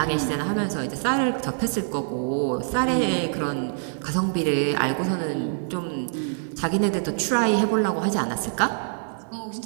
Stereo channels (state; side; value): silent; left; 59 dB below the other